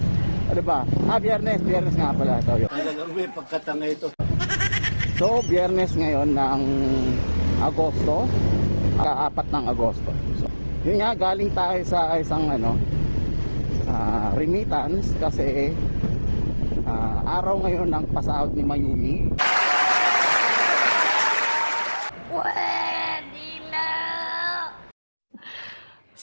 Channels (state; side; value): inverted; both; correlation -1.00